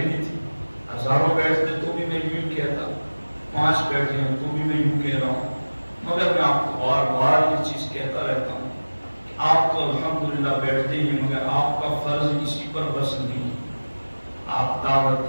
تھی، ہزاروں بیٹھتے تو بھی میں یوں کہتا، 5 بیٹھے ہیں تو بھی میں یوں کہہ رہا ہوں، مگر میں آپ کو بار بار یہ چیز کہتا رہتا ہوں کہ آپ تو الحمدللہ بیٹھتے ہی، مگر آپ کا فرض اسی پر بس نہیں ہے، آپ دعوت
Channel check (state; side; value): inverted; both; correlation -1.00